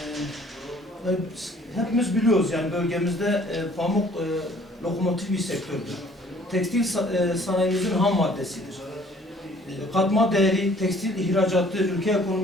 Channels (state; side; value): normal; both; correlation 0.56